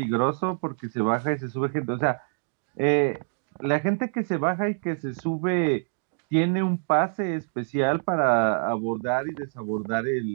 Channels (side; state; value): left; silent; digital silence